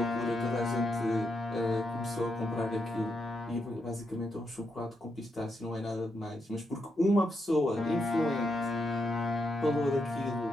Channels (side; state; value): both; normal; correlation 0.82